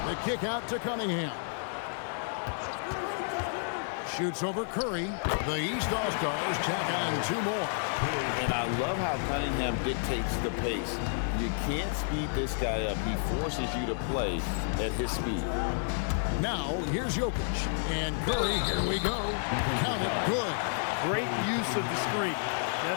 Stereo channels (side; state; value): right; silent; 57 dB below the other